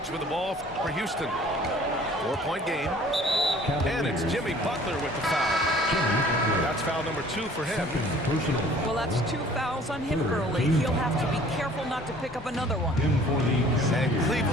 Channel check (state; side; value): normal; both; correlation 0.52